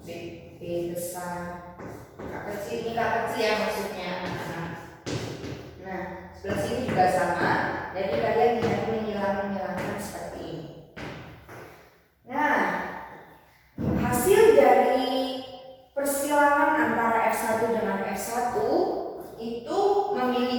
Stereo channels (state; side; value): identical; both; correlation 1.00